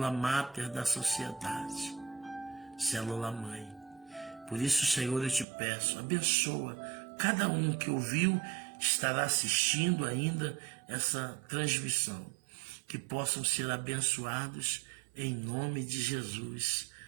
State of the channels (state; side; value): drops out; left; at 5.5 s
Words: máter da sociedade, célula mãe. Por isso, Senhor, eu te peço, abençoa cada um que ouviu, estará assistindo ainda essa transmissão, que possam ser abençoados em nome de Jesus.